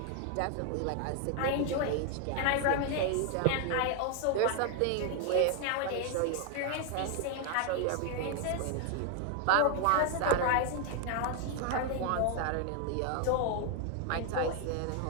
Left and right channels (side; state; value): both; different; correlation 0.00